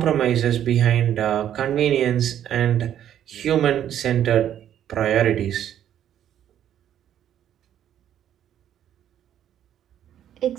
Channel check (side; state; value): left; quieter; 10.5 dB